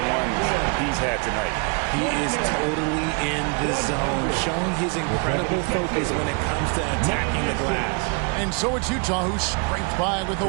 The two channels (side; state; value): left; quieter; 35.7 dB